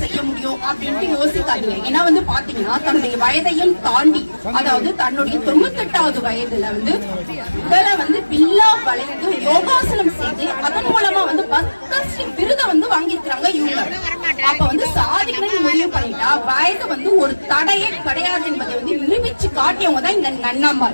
முடியும் அப்படின்ட்டு யோசிக்காதீங்க. ஏன்னா பாத்தீங்கன்னா தன்னுடைய வயதையும் தாண்டி, அதாவது தன்னுடைய 98வது வயதுல உடலை வில்லா வளைந்து யோகாசனம் செய்து அதன் மூலமா பத்மஸ்ரீ விருதை வாங்கிருக்கிறாங்க இவங்க. அப்ப சாதிக்கணும்னு முடிவு பண்ணிட்டா வயது ஒரு தடையே கிடையாது என்பதை நிரூபிச்சு காட்டியவங்க தான் இந்த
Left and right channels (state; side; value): inverted; both; correlation -1.00